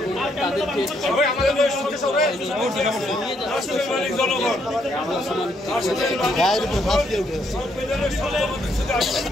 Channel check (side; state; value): both; normal; correlation 0.73